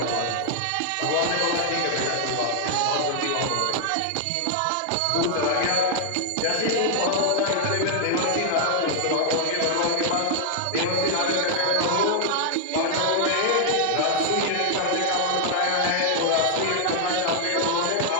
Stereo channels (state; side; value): different; both; correlation 0.00